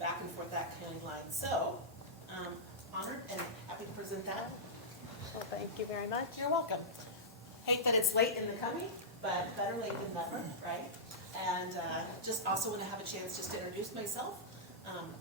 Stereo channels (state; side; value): normal; both; correlation -0.12